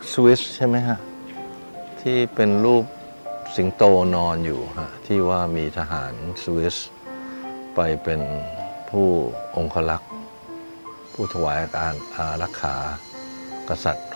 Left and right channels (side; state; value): both; inverted; correlation -1.00